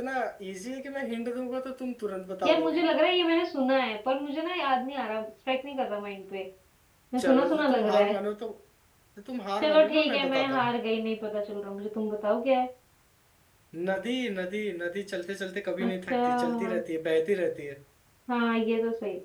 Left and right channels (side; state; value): both; identical; correlation 1.00